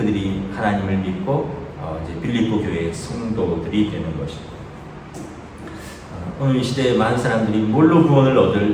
하나님을 믿고 이제 빌립보 교회의 성도들이 되는 것입니다. 오늘 이 시대에 많은 사람들이 뭘로 구원을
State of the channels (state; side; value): identical; both; correlation 1.00